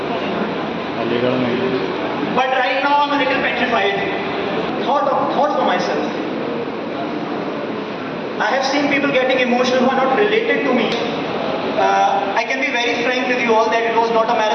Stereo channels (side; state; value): both; identical; correlation 1.00